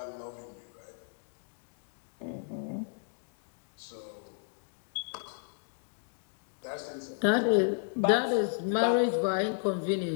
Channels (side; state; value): right; silent; digital silence